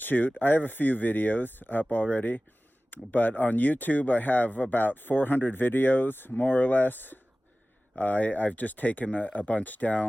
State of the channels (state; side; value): normal; both; correlation 0.97